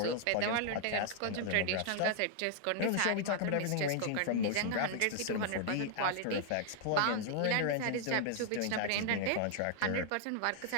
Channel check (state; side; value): different; both; correlation 0.00